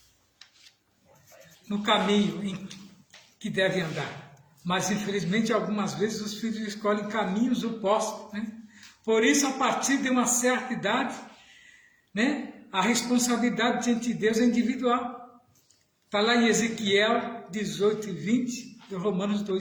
no caminho em que devem andar. Mas, infelizmente, algumas vezes os filhos escolhem caminhos opostos, né? Por isso, a partir de uma certa idade, né, a responsabilidade diante de Deus é individual. Está lá em Ezequiel 18 e 20, e Romanos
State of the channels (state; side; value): identical; both; correlation 1.00